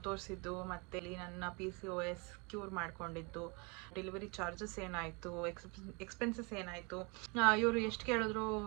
ತೋರಿಸಿದ್ದು ಮತ್ತು ಇಲ್ಲಿ ನನ್ನ PCOS ಕ್ಯೂರ್ ಮಾಡ್ಕೊಂಡಿದ್ದು, ಡೆಲಿವರಿ ಚಾರ್ಜಸ್ ಏನಾಯಿತು, ಎಕ್ಸ್ಪೆನ್ಸಸ್ ಏನಾಯಿತು, ಇವರು ಎಷ್ಟು ಕೇಳಿದ್ರು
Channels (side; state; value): left; quieter; 30.7 dB